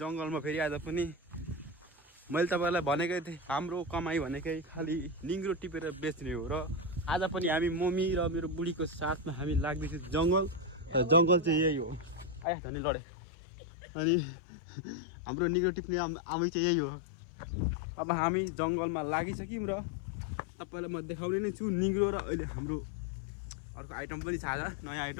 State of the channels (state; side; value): drops out; right; at 12.5 s